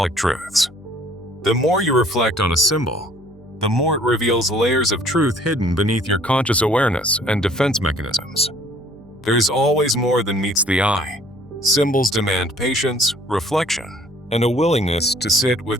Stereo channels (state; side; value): normal; both; correlation 0.56